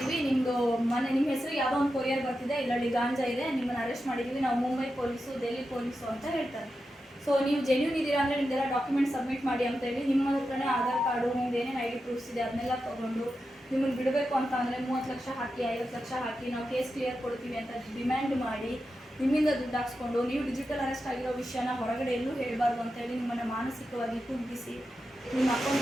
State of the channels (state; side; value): normal; both; correlation 0.89